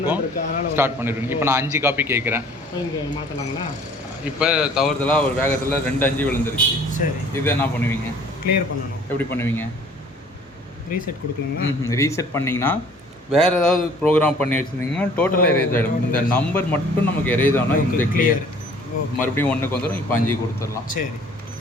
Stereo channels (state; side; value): normal; both; correlation 0.53